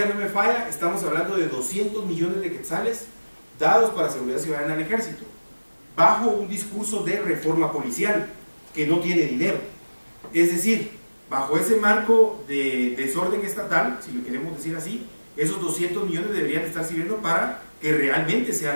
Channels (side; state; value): both; inverted; correlation -1.00